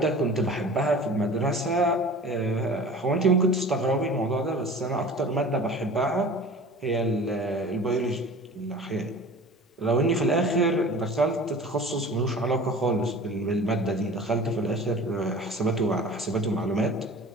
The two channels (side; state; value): both; normal; correlation 0.40